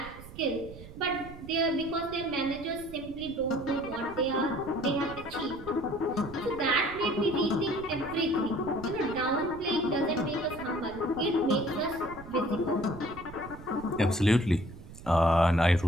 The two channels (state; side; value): noise; right; rumble, 16 dB below the sound